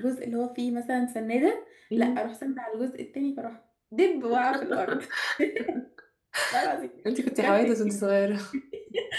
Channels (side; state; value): both; identical; correlation 1.00